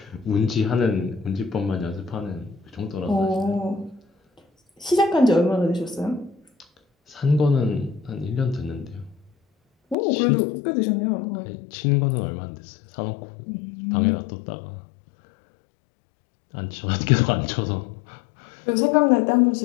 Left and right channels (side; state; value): right; drops out; at 10.0 s